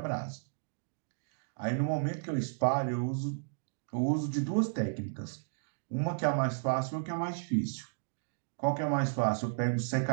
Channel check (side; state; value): left; silent; digital silence